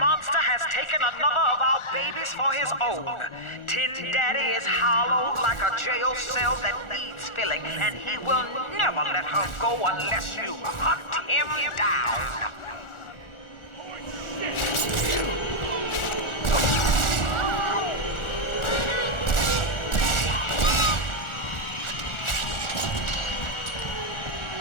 has taken another of our babies for his own. Tin Daddy is hollowed like a jail cell that needs filling, and he will never let her go unless you hunt him down.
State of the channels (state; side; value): late; right; 1.4 ms